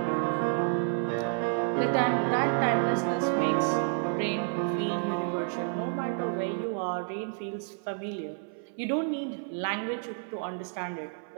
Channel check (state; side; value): silent; left; 58 dB below the other